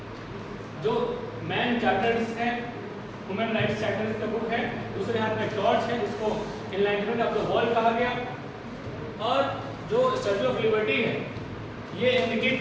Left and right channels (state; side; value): identical; both; correlation 1.00